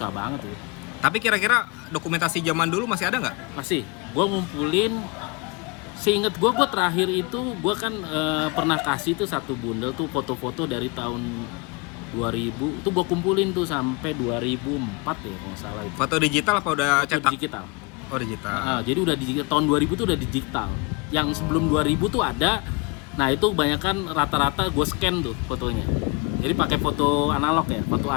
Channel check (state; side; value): quieter; right; 28.4 dB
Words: banget tuh. Tapi kira-kira dokumentasi zaman dulu masih ada nggak? Masih, gua ngumpulin. Seinget gua terakhir itu gua kan pernah kasih tuh satu bundel tuh foto-foto dari tahun 2000. Itu gua kumpulin tuh sampai 2004 ya kalau nggak salah itu. Foto digital apa udah Foto cetak? digital. Oh, digital. Nah, jadi udah digital, tahun 2000 tuh udah digital. Yang sebelum 2000 tuh ada. Nah, itu kebanyakan rata-rata gue scan tuh fotonya. Jadi pakai foto analog ya, foto